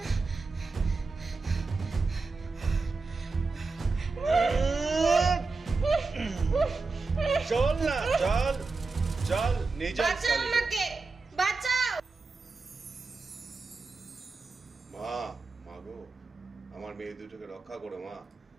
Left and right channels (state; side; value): quieter; left; 4.0 dB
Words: চল না, চল চল, নিয়ে চল। বাঁচাও আমাকে, বাঁচাও। মা, মা গো, আমার মেয়ে দুটোকে রক্ষা করো মা,